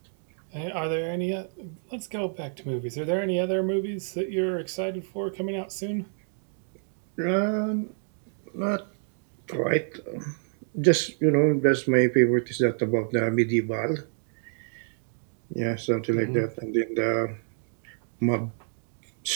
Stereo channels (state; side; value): silent; left; 59 dB below the other